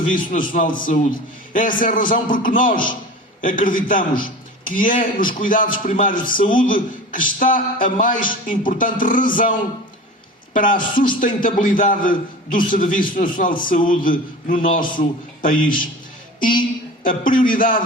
Nacional de Saúde. Essa é a razão porque nós acreditamos que é nos cuidados primários de saúde que está a mais importante razão para a sustentabilidade do Serviço Nacional de Saúde no nosso país. E a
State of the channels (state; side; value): normal; both; correlation 0.35